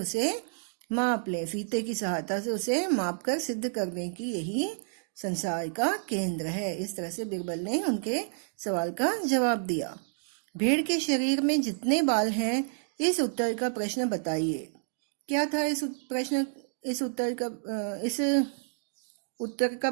माप लें, फीते की सहायता से उसे माप कर सिद्ध करने की यही संसार का केंद्र है। इस तरह से बीरबल ने उनके सवाल का जवाब दिया। भेड़ के शरीर में जितने बाल हैं, इस उत्तर का प्रश्न बताइए। क्या था इस उत्तर का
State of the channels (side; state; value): left; silent; digital silence